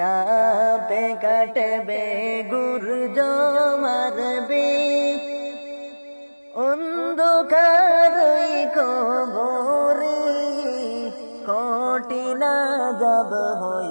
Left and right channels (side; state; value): both; inverted; correlation -1.00